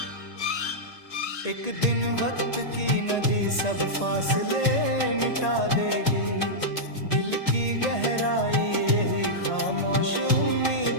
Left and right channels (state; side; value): late; right; 1.8 ms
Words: एक दिन वक्त की नदी सब फासले मिटा देगी। दिल की गहराई यही खामोश